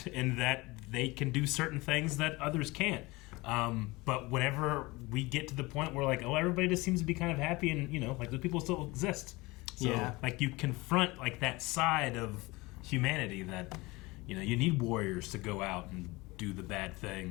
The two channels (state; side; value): quieter; right; 22.6 dB